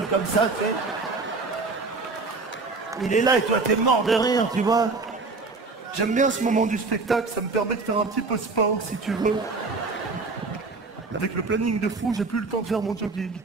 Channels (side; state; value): left; quieter; 3.9 dB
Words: comme ça, tu sais. Il est là et toi, t'es mort de rire, tu vois. J'aime bien ce moment du spectacle, ça me permet de faire un petit peu sport, si tu veux. Avec le planning de fou, j'ai plus le temps de faire mon jogging.